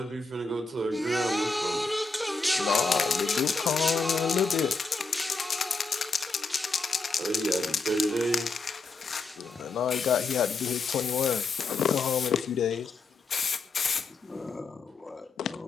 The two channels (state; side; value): quieter; right; 4.0 dB